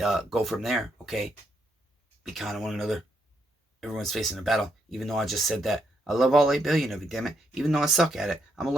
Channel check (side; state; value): both; normal; correlation 0.78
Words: go from there, okay? Be kind to one another. Everyone's facing a battle. Even though I just said that. I love all 8 billion of you, damn it. Even though I suck at it. I'm going